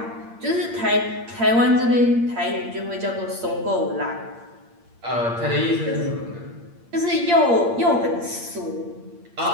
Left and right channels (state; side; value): late; left; 8.7 ms